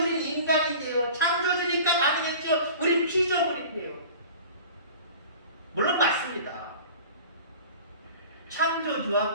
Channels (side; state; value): both; inverted; correlation -0.41